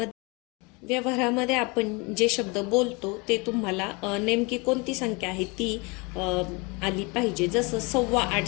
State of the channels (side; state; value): right; quieter; 28.4 dB